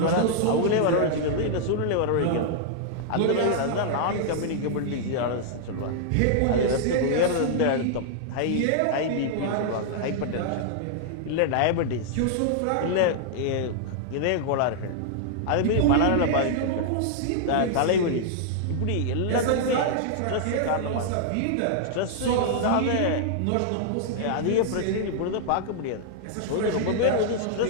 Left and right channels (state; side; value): different; both; correlation -0.01